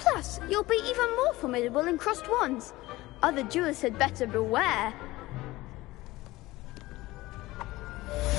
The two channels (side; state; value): right; quieter; 18.8 dB